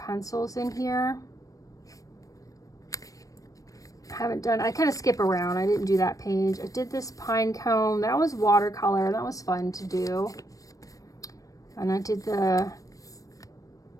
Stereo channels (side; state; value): right; late; 0.16 ms